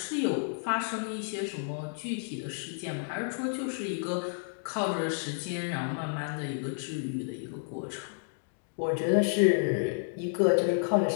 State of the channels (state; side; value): silent; right; digital silence